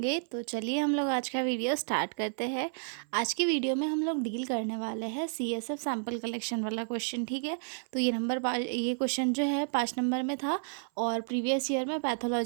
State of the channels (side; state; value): left; silent; 57 dB below the other